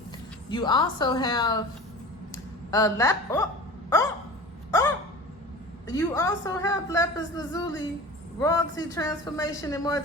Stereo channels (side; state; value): both; normal; correlation 0.36